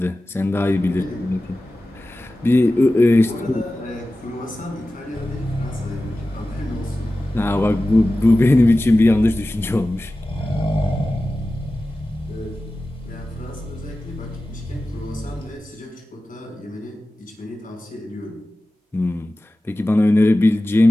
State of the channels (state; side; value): normal; both; correlation 0.95